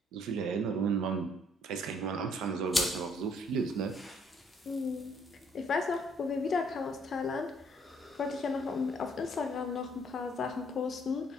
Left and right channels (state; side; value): normal; both; correlation 0.64